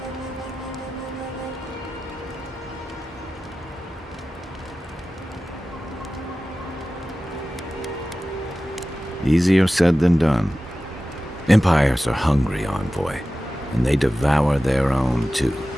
Easier said than done. Empires are hungry, Envoy, and they devour their own too.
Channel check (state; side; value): normal; both; correlation 0.95